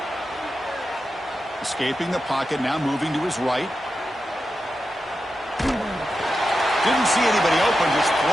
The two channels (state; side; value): normal; both; correlation 0.90